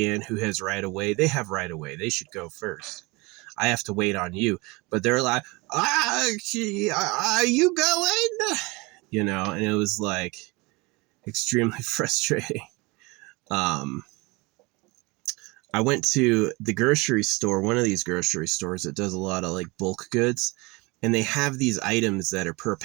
who has right of way. They have right of way. They should go first. I have to wait on you. But they're like, are you going? And it was like extremely frustrating. Um, I went to the grocery store, one of these grocery stores that does a lot of like bulk goods, and they have these items that are per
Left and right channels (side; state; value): left; quieter; 25.2 dB